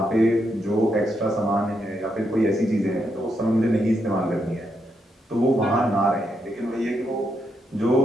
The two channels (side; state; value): both; normal; correlation 0.80